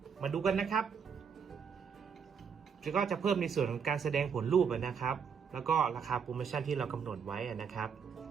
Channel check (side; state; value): left; quieter; 6.7 dB